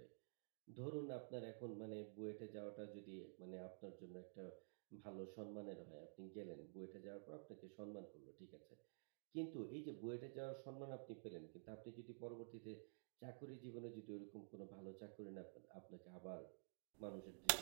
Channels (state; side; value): silent; left; digital silence